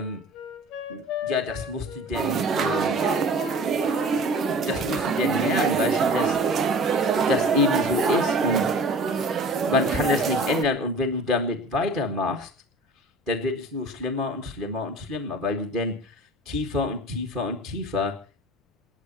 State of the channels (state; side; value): normal; both; correlation 0.41